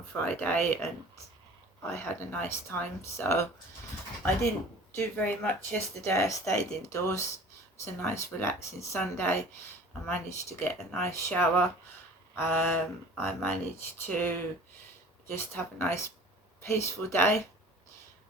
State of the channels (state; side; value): normal; both; correlation 0.45